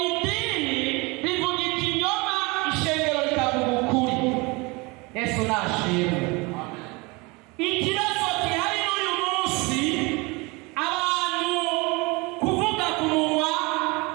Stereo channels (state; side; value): quieter; left; 26.2 dB